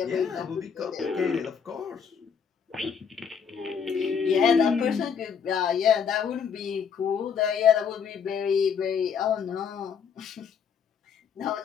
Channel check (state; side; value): quieter; right; 6.9 dB